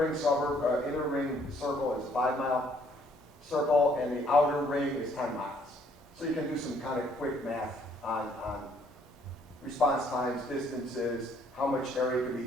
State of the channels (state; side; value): normal; both; correlation 0.64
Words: circle is a 5-mile circle, and the outer ring is 10 miles. So you can do some kind of quick math on response times, distances, how much area could be